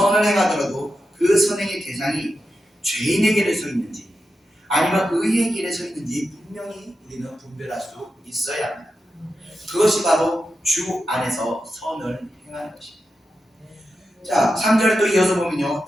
행하더라도 그 선행의 대상이 죄인의 길에 서 있는지 아니면 의의 길에 서 있는지 분명히 우리는 분별할 수 있어야 합니다. 그것이 바로 주 안에서 선을 행하는 것입니다. 자, 3절에 또 이어서 보면요,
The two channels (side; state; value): both; normal; correlation 0.89